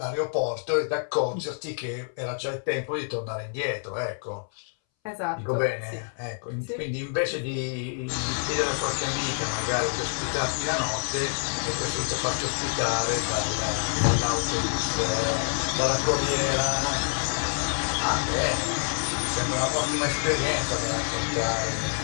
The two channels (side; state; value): right; silent; 60 dB below the other